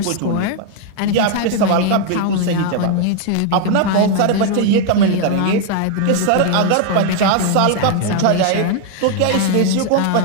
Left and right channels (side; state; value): both; different; correlation 0.00